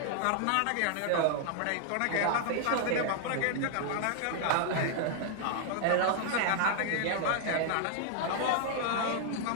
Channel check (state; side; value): different; both; correlation -0.01